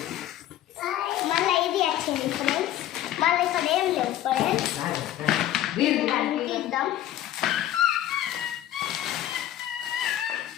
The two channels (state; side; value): quieter; right; 12.6 dB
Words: మళ్ళీ ఇది వచ్చింది ఫ్రెండ్స్. మళ్ళీ ఇక్కడ ఏం లేవు ఫ్రెండ్స్. తీద్దాం.